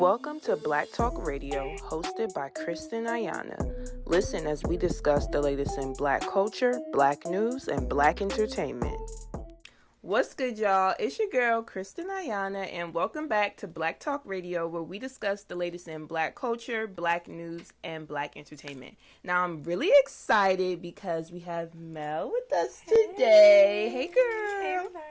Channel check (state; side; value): identical; both; correlation 1.00